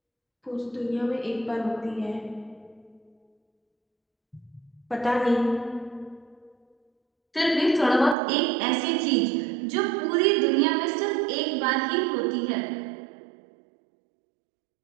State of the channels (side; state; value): left; drops out; at 8.2 s